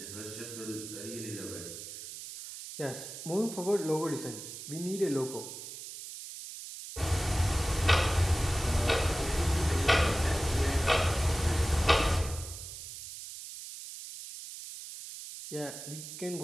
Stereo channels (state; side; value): noise; right; hiss, 11 dB below the sound